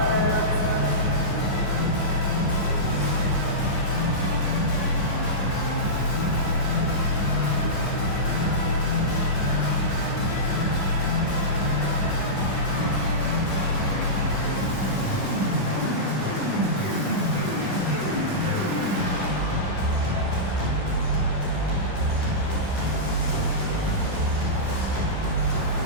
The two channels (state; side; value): late; right; 10 ms